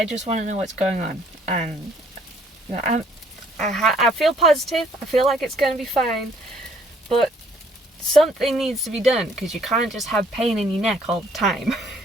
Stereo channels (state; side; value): normal; both; correlation 0.62